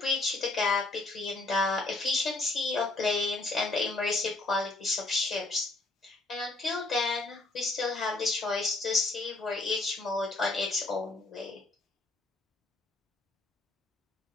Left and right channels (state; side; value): quieter; right; 3.1 dB